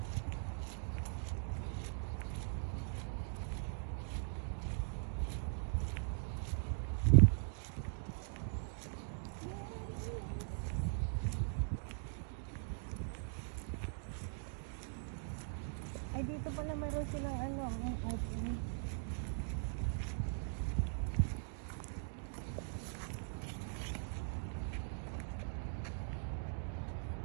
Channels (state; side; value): silent; left; digital silence